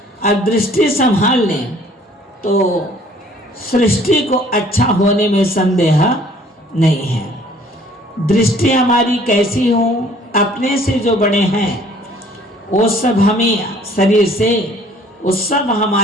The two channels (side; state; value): both; normal; correlation 0.56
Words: और दृष्टि संभाल लें तो सृष्टि को अच्छा होने में संदेह नहीं है। दृष्टि हमारी कैसी हो? अपने से जो बड़े हैं वो सब हमें शरीर से, वो सब